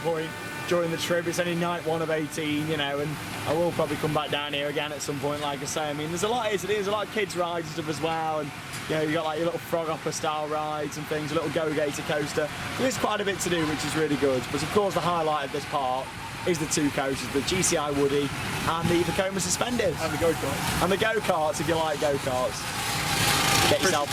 during the trip. It's only night 1 of 18, you know, and I will probably come back down here again at some point, like I say. I mean, there's a lot here to do. There's a lot of kids rides and stuff as well, and you know, you got like your little frog hopper style rides and things, a little go-gator coaster. There is quite a bit to do, which is really good. But of course, the highlight of this park is the 2 coasters, the GCI Woody and the Vekoma Suspended. And the go-karts. And the go-karts, if you like go-karts. Get yourself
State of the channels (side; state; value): both; identical; correlation 1.00